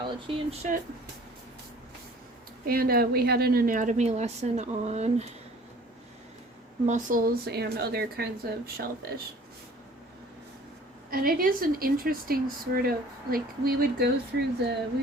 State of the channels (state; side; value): normal; both; correlation 0.50